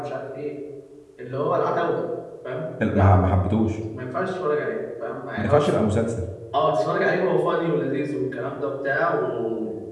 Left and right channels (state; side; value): identical; both; correlation 1.00